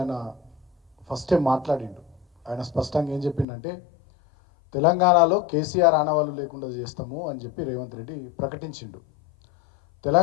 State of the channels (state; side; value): drops out; right; at 3.5 s